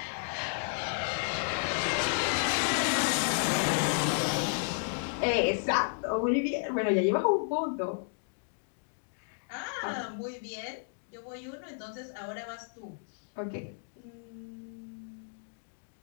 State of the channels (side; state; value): right; silent; digital silence